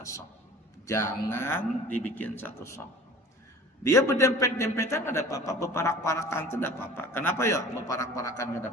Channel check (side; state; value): both; normal; correlation 0.43